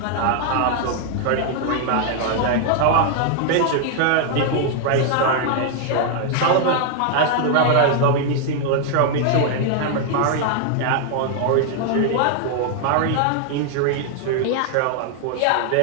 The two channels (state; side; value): different; both; correlation 0.00